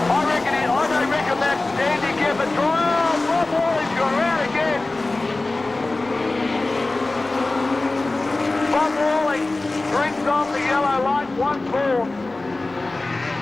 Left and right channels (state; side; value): quieter; right; 3.1 dB